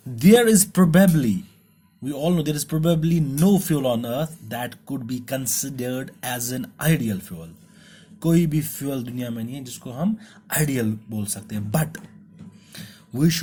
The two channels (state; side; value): identical; both; correlation 1.00